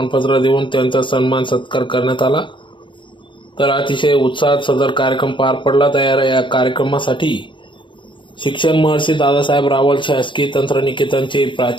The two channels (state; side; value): late; right; 0.24 ms